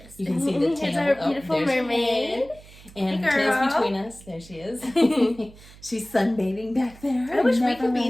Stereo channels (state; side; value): noise; right; hum, 21 dB below the sound